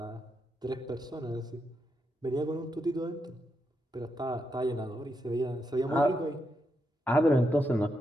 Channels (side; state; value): both; normal; correlation 0.83